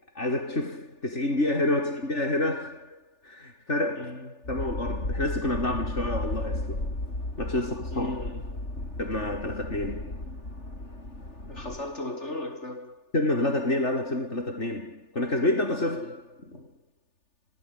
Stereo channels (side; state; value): right; late; 3.4 ms